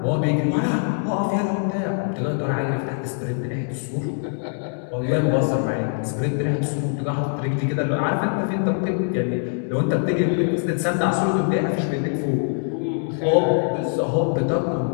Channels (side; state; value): right; silent; 58 dB below the other